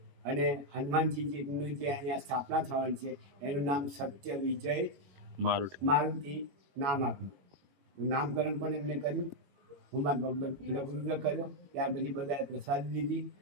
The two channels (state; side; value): late; left; 21 ms